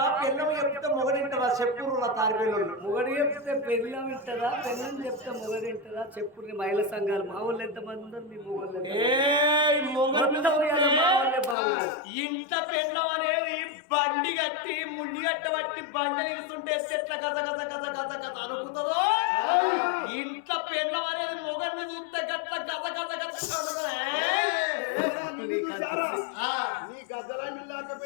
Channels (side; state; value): right; drops out; at 11.6 s